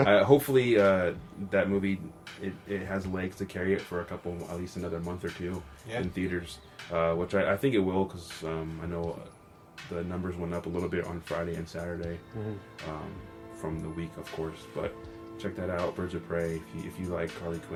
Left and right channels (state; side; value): identical; both; correlation 1.00